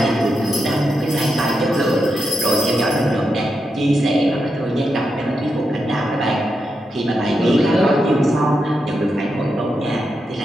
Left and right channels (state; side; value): normal; both; correlation 0.86